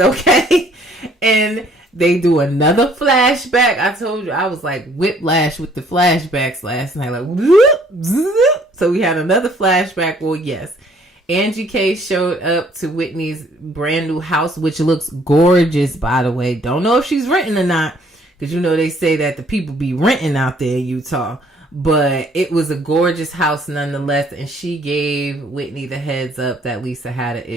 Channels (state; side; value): normal; both; correlation 0.61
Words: And they do another flashback. I told you, I was like whiplash with the flashbacks last night. Like, whoop, zoop. So we had another flashback. Well, yes. Angie K showed up to Whitney's brand new house, which looks gorgeous, by the way. Don't know if she's renting or not, because you know they say that the people be renting out there in Utah. But it was a gorgeous house nonetheless, and she gave Whitney the heads up that Lisa had an